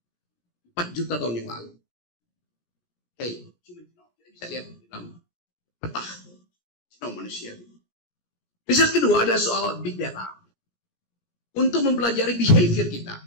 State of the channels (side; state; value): right; late; 17 ms